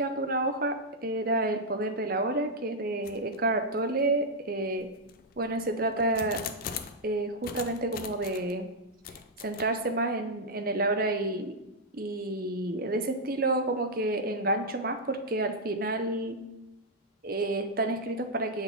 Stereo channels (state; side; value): normal; both; correlation -0.04